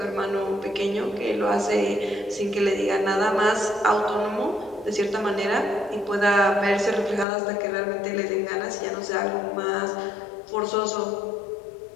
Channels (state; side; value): drops out; right; at 7.2 s